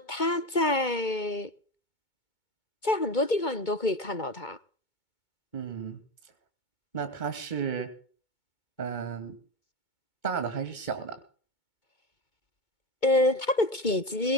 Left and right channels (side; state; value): right; late; 2.2 ms